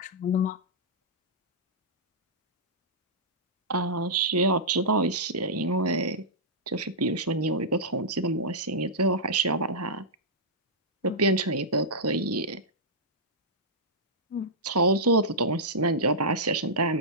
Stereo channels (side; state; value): both; normal; correlation -0.13